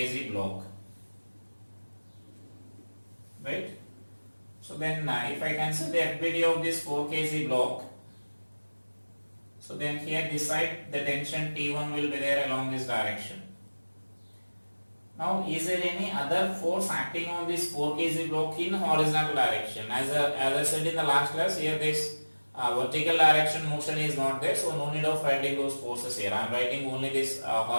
block, right? So then if I consider the FBD of this 4 kg block, so then here this side the tension T1 will be there along this direction. Now is there any other force acting on this 4 kg block in horizontal direction? As I said in the last class, here this vertical direction motion is not there, so no need of writing those forces here. I am writing only this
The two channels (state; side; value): inverted; both; correlation -1.00